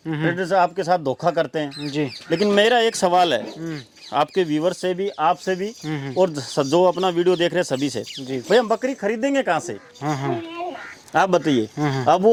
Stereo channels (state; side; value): identical; both; correlation 1.00